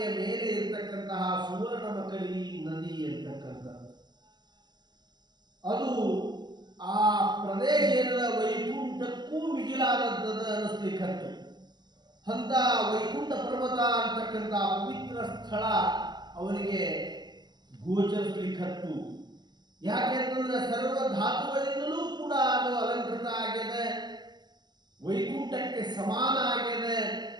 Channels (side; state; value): left; late; 0.21 ms